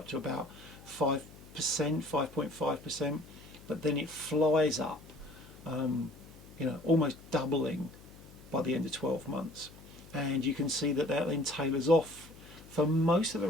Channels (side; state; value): left; noise; hum, 20 dB below the sound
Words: to about 5%, 5.5%, but then it flies up, you know, almost doubling by the end of 12 months. And you can see that that then tailors off for most of the